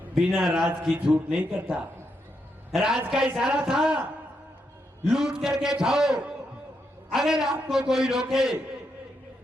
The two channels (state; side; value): normal; both; correlation 0.81